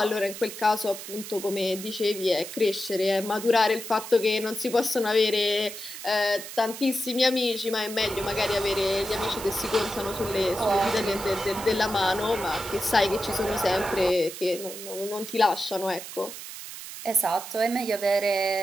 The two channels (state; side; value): noise; right; hiss, 11 dB below the sound